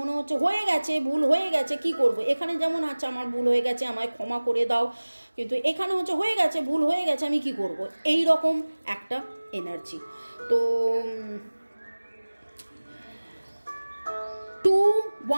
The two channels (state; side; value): inverted; both; correlation -1.00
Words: হচ্ছে হয়ে গেছে, ভুল হয়ে গেছে, কি করব। এখানে যেমন আচ্ছা আমার ভুল হয়ে গেছে, আমায় ক্ষমা করে দাও, কিন্তু এখানে হচ্ছে হয়ে গেছে, ভুল হয়ে গেছে, আমি কি করব, এই রকম একটা এনার্জি। তো